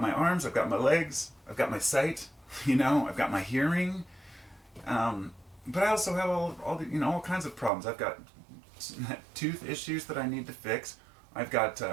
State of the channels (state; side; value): drops out; left; at 7.7 s